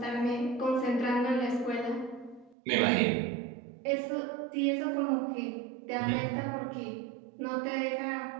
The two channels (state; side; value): drops out; left; at 2.6 s